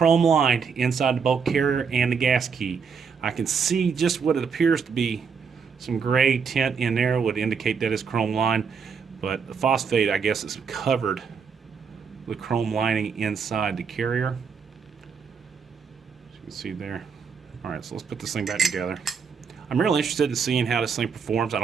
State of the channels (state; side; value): quieter; left; 6.0 dB